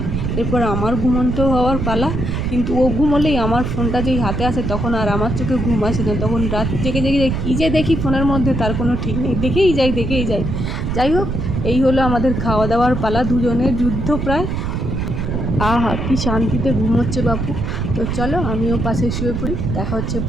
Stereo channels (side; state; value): right; noise; rumble, 2 dB below the sound